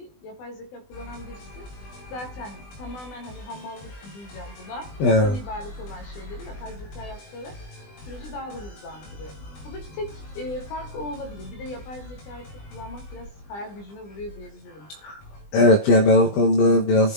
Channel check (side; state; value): right; late; 20 ms